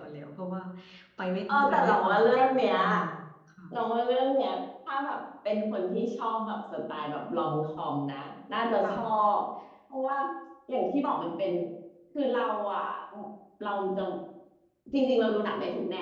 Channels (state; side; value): identical; both; correlation 1.00